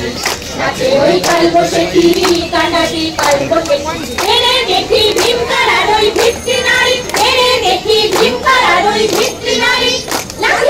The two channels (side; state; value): both; identical; correlation 1.00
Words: নাচে ওই কাল বসেকি কাটাবি কাল বসেকি এনে দেখি ভীমকারার ওই ভিত্তি নারী এনে দেখি ভীমকারার ওই ভিত্তি নারী